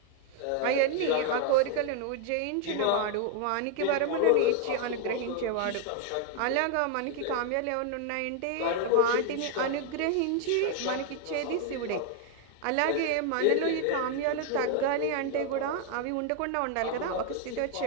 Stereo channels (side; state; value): both; different; correlation 0.00